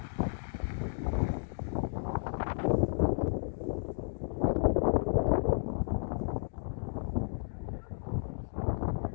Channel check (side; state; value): right; silent; digital silence